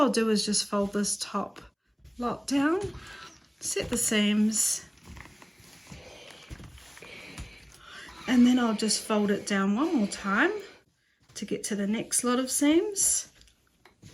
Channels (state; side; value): identical; both; correlation 1.00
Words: do is just fold this top lot down, set the seams, and then I'll just fold it down one more time to get to the next lot of seams.